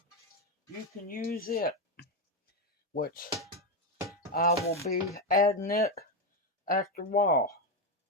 you can use it, which I will be adding it after a while.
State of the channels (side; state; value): both; normal; correlation 0.09